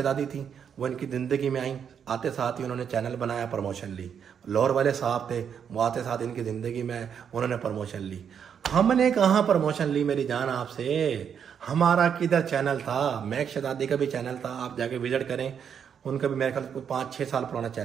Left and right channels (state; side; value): quieter; left; 7.8 dB